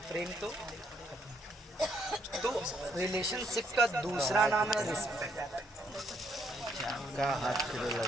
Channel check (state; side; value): normal; both; correlation 0.71